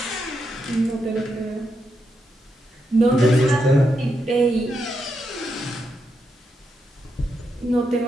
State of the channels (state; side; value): normal; both; correlation 0.83